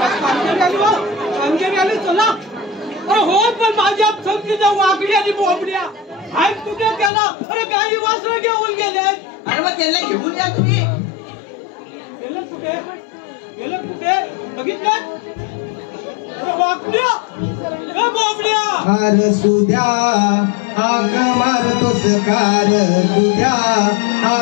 आली. कामगिरी आली चला. अरे हो पण माझ्या समजीच्या वाकडी आणि बोबड्या आहेत कुठे त्याला? अरे काही वासरं घेऊन गेले. अरे मग त्याला घेऊन या तुम्ही. गेलं कुठे? गेलं कुठे? बघितलं? अरे वाकड्या बोबड्या. अरे सुद्या हाक मारतोस कार. सुद्या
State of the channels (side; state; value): right; drops out; at 7.1 s